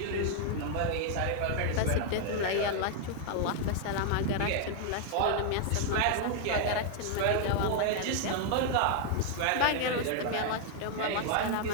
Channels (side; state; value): both; different; correlation 0.00